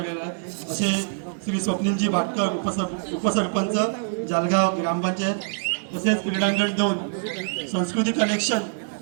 आहे, असे श्री स्वप्नीलजी भाटकर उपसरपंच जळगाव ग्रामपंचायत, तसेच क्रीडांगण 2 संस्कृती कलेक्शन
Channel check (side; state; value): left; silent; digital silence